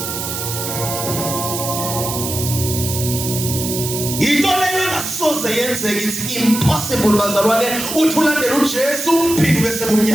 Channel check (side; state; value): right; noise; hiss, 5 dB below the sound